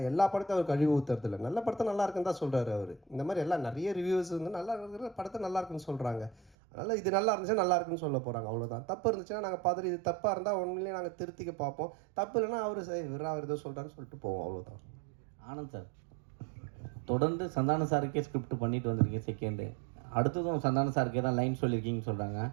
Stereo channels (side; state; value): left; drops out; at 6.6 s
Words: எல்லா படத்தையும் அவர் கழிவு ஊற்றுறதில்ல, நல்ல படத்தை நல்லா இருக்குன்னு தான் சொல்கிறாரு அவர். இந்த மாதிரி எல்லாம் நிறைய ரிவ்யூஸ் வந்து நல்லா இருக்கிற படத்தை நல்லா இருக்குன்னு சொல்கிறாங்க. அதனால் இது நல்லா இருந்துச்சுன்னா நல்லா இருக்குன்னு சொல்ல போகிறாங்க, அவ்வளோதான். தப்பு இருந்துச்சுன்னா நாங்கள் பார்த்துட்டு இது தப்பாக இருந்தால் உண்மையிலேயே நாங்கள் திருத்திக்க பார்ப்போம். தப்பு இல்லைன்னா அவர் சரி விரா அவர் ஏதோ சொல்கிறான்னு சொல்லிட்டு போவோம், அவ்வளோதான். ஆனந்த் சார், தொடர்ந்து சந்தான சாருக்கே ஸ்கிரிப்ட் பண்ணிட்டு வந்திருக்கீங்க செகண்டு, அடுத்ததும் சந்தான சாருக்கே தான் லைன் சொல்லியிருக்கீங்கன்னு சொல்கிறாங்க.